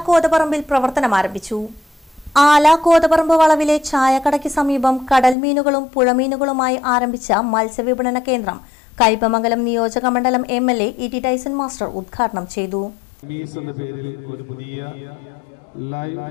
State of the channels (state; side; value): drops out; right; at 5.4 s